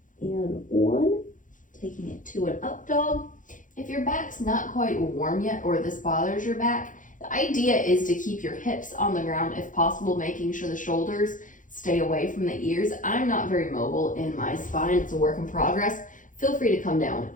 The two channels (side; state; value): right; late; 0.38 ms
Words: and 1. Taking it to an up dog. If your back's not quite warm yet, or this bothers your back, the idea is to keep your hips on the ground if possible, making sure the shoulders stay away from the ears. I'm not very mobile in my spine. It's a work in progress. Feel free to come down